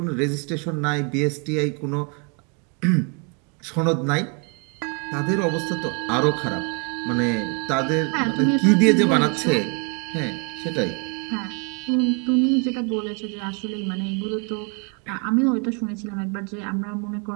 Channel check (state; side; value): quieter; left; 35.1 dB